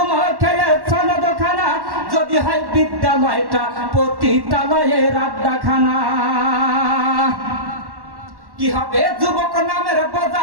খেয়ে সনদখানা, যদি হয় বিদ্যালয়টা পতিতালয়ের আড্ডাখানা। কি হবে যুবক নামের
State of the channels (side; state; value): left; late; 1.1 ms